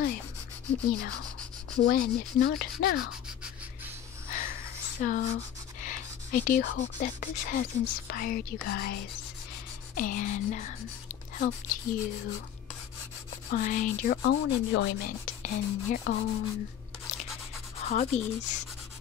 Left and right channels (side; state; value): right; quieter; 9.8 dB